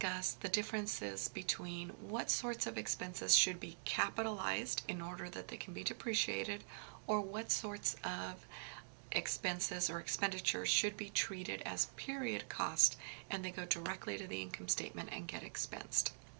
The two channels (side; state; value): left; silent; digital silence